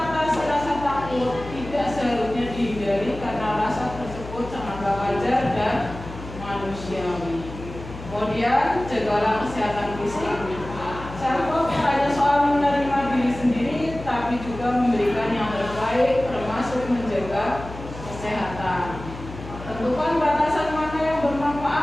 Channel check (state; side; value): noise; left; hum, 12 dB below the sound